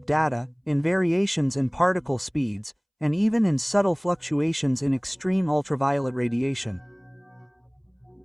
data, in variations in particle speeds, and even in subtle fluctuations in extreme ultraviolet radiation.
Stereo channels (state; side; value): identical; both; correlation 1.00